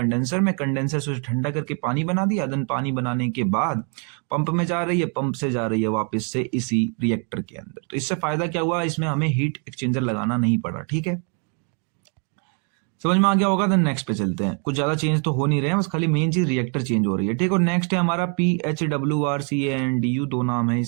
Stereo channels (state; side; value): quieter; left; 39.9 dB